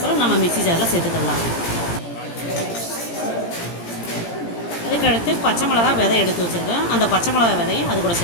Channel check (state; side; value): late; right; 17 ms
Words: நம்ம மிக்ஸி ஜாரில் சேர்த்துக்கலாம். அதுக்கடுத்து பச்சை மிளகா விதை எடுத்து வச்சுருக்கேன். அந்த பச்சை மிளகா விதையும் அது கூட